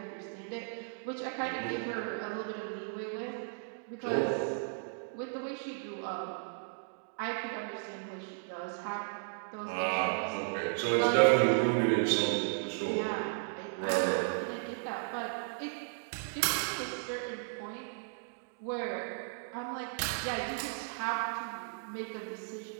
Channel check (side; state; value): left; silent; digital silence